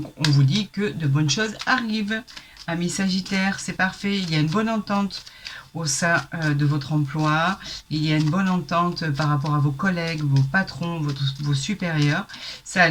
on vous dit que de bonnes choses arrivent. Amis Sagittaire, c'est parfait. Il y a une bonne entente au sein de votre emploi. Il y a une bonne entente par rapport à vos collègues, vos patrons, vos supérieurs. Ça a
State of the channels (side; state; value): both; identical; correlation 1.00